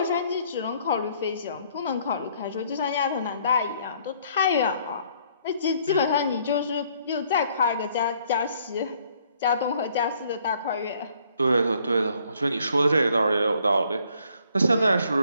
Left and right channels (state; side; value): inverted; both; correlation -0.64